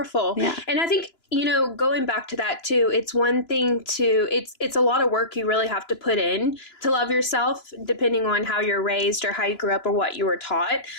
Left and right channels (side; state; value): right; late; 2.9 ms